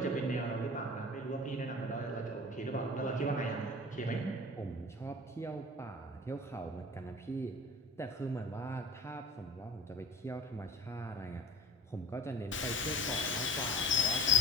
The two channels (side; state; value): both; normal; correlation 0.37